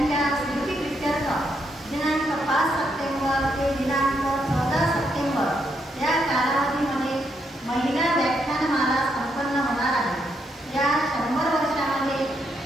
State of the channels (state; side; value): normal; both; correlation 0.78